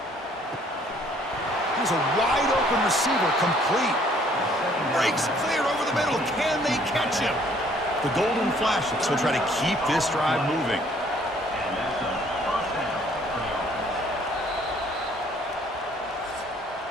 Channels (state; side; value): normal; both; correlation 0.61